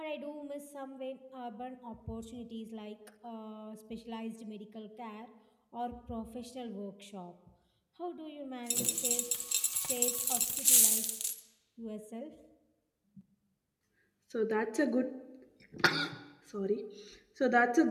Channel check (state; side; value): identical; both; correlation 1.00